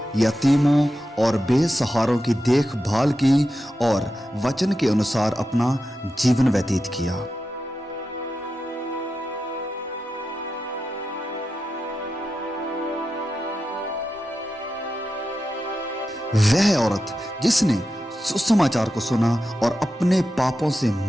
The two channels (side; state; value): both; normal; correlation 0.90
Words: यतीमों और बेसहारों की देखभाल की और वचन के अनुसार अपना जीवन व्यतीत किया। वह औरत जिसने सुसमाचार को सुना और अपने पापों से